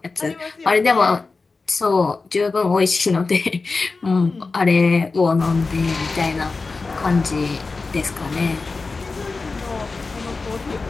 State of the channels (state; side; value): quieter; right; 4.0 dB